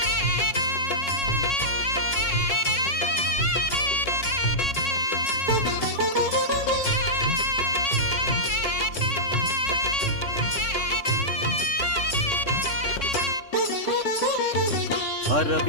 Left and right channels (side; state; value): right; late; 3.6 ms